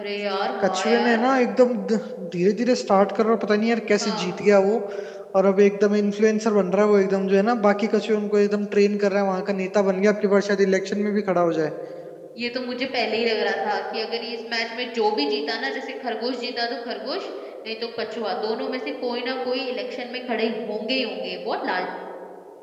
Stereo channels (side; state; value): both; identical; correlation 1.00